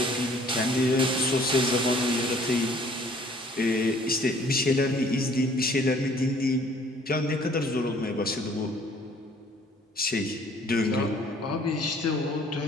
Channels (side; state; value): both; normal; correlation 0.57